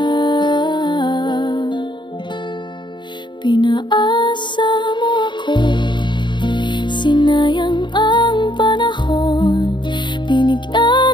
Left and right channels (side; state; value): right; late; 0.22 ms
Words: Pinaasa mo ako, sinayang ang panahon, binigyan